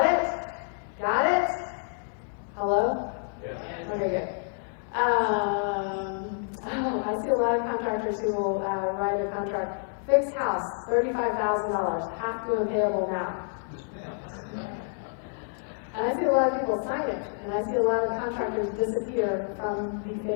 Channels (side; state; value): right; silent; digital silence